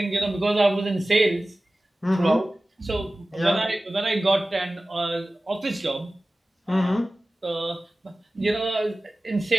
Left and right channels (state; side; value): normal; both; correlation 0.96